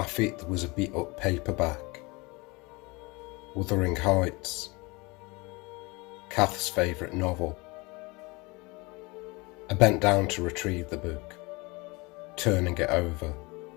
feet there was a beat-up paperback. Wuthering Heights, Kath's favourite novel. I bent down to retrieve the book, turning it over,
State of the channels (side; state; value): right; quieter; 25.7 dB